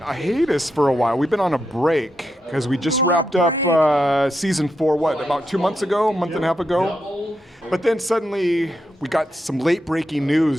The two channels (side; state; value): both; normal; correlation 0.84